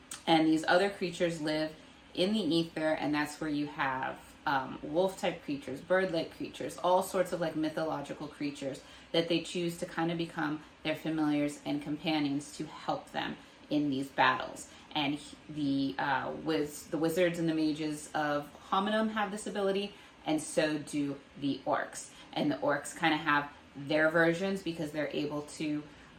And these other creatures live in the ether, and that's where you have wolf-type creatures, bird-like creatures, all sorts of like mythological creatures that they choose to kind of become their familiars and companions to help them in these battles. And the wizards and the mages of Hominem have this ability, and so do the orcs. And the orcs kind of have their versions because they're able to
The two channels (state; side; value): identical; both; correlation 1.00